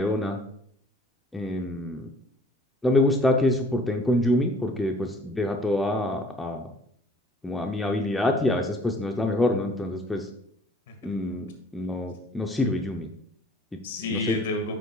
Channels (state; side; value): normal; both; correlation 0.54